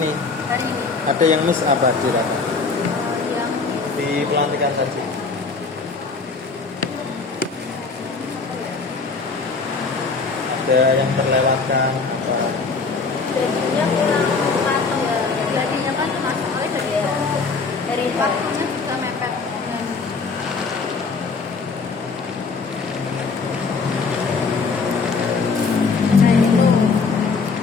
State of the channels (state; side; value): quieter; right; 4.5 dB